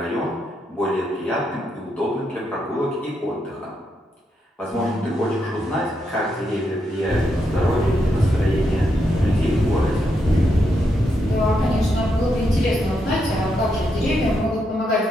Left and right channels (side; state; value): both; normal; correlation 0.81